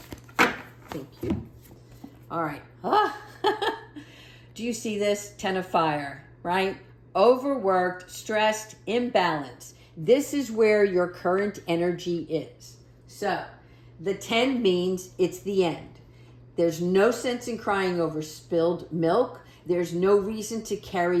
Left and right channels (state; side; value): identical; both; correlation 1.00